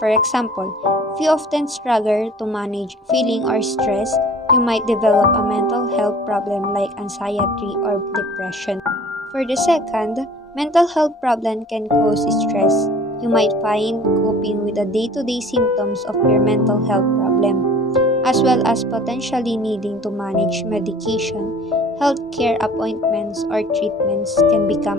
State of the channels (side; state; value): both; normal; correlation 0.48